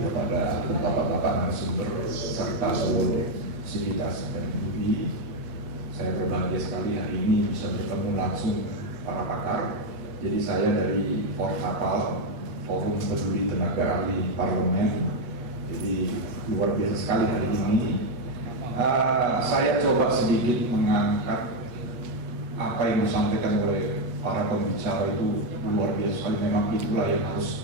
bapak-bapak narasumber serta seluruh sivitas FMUI. Saya berbahagia sekali hari ini bisa bertemu langsung para pakar. Jadi saya dari Forkapal, Forum Peduli Tenaga Ahli Parlemen. Jadi luar biasa sekali hari ini. Saya coba sedikit mengangkat apa yang disampaikan oleh para pembicara itu luar biasa sekali. Memang itulah yang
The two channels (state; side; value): late; left; 8.2 ms